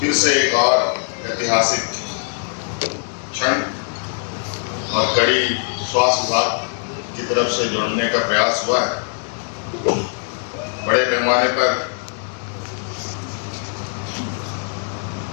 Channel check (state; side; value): silent; right; 59 dB below the other